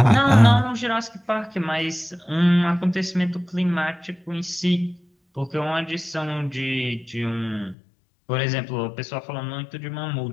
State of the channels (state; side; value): drops out; right; at 7.8 s